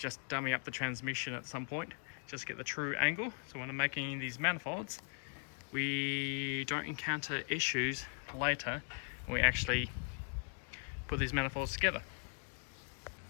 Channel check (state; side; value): silent; right; 52 dB below the other